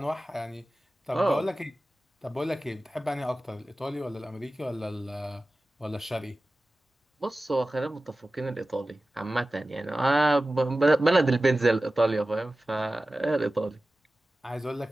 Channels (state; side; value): normal; both; correlation 0.96